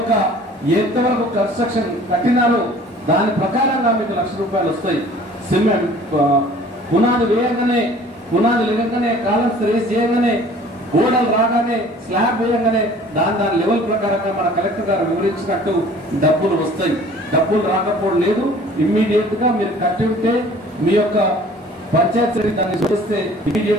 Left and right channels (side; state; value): both; normal; correlation 0.50